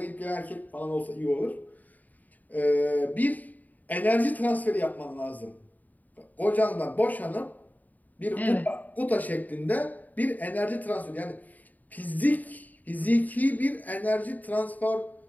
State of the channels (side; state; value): right; late; 0.080 ms